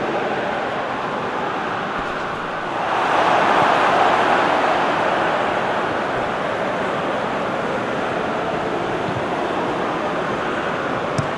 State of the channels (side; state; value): both; identical; correlation 1.00